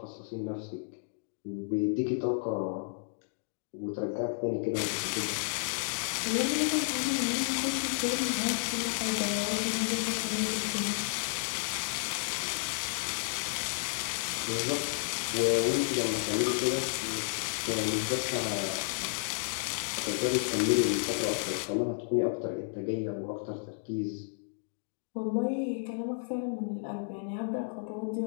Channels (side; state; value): right; silent; digital silence